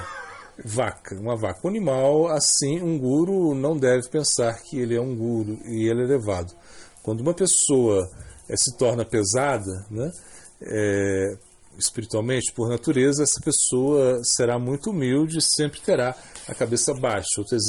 uma vaca. Um animal, assim, um guru não deve pensar que ele é um guru e ele é elevado. Quando uma pessoa se torna pesada, né, espiritualmente, por natureza, essa pessoa será muito humilde e sempre terá a cabeça baixa. Outro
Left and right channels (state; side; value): identical; both; correlation 1.00